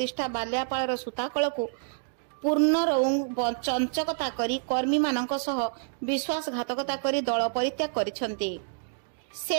बालियापालर सूताकलकु पूर्ण चंचकता करी कर्मी मानक सह विश्वासघातकता करी दल परित्याग करिसंती।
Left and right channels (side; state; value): left; silent; digital silence